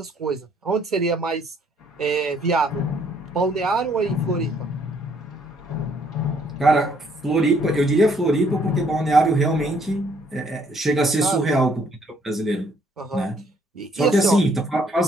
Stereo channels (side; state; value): both; normal; correlation 0.65